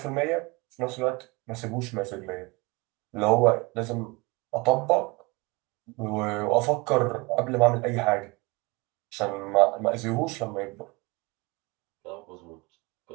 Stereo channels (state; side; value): quieter; left; 26.2 dB